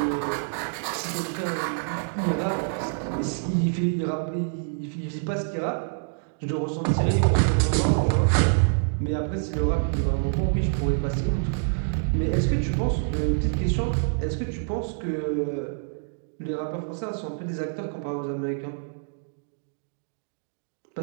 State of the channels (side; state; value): left; silent; digital silence